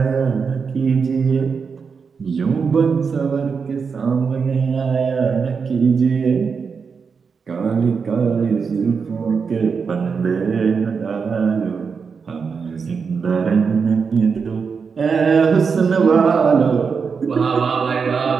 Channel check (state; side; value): quieter; left; 5.6 dB